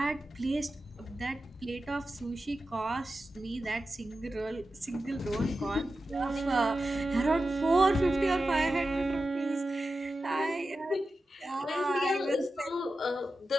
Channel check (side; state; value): both; normal; correlation 0.92